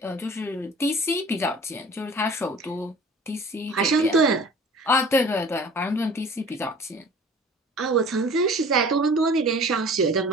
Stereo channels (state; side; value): normal; both; correlation 0.45